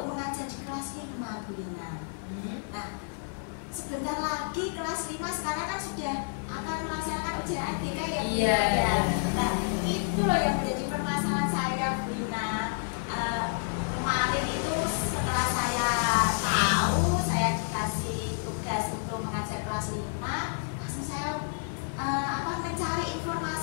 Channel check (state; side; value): silent; right; 58 dB below the other